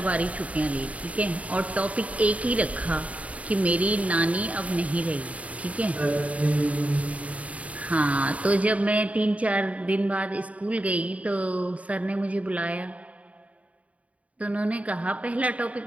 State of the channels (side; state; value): left; late; 0.067 ms